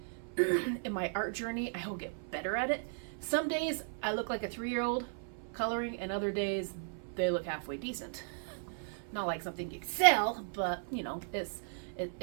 in my art journey I will get better at it. Some days I look like a 3-year-old coloring, and other days they look halfway decent. Not like something you can sell, but it's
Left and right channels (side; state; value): left; silent; 54 dB below the other